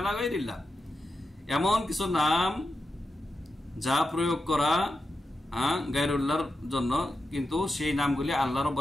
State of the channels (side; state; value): both; normal; correlation 0.89